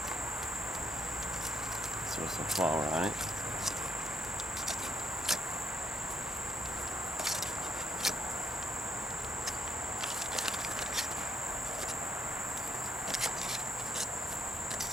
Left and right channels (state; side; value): normal; both; correlation 0.73